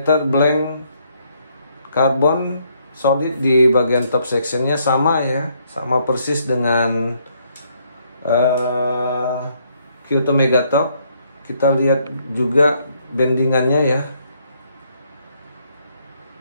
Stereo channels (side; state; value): both; inverted; correlation -0.71